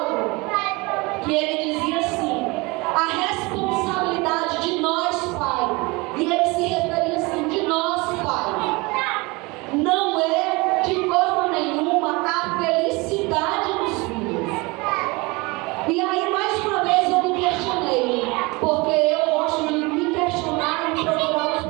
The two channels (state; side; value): quieter; left; 25.2 dB